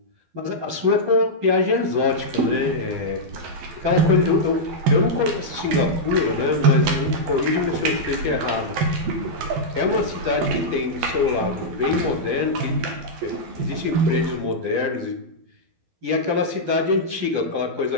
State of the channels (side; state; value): left; late; 12 ms